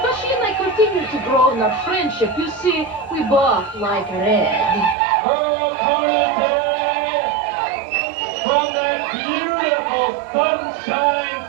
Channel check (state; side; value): drops out; left; at 5.0 s